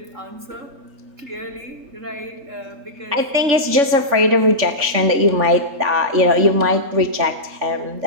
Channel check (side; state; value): left; late; 3.5 ms